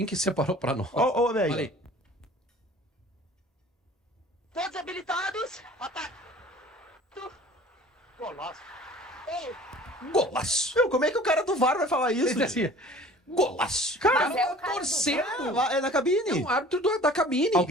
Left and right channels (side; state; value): both; normal; correlation 0.47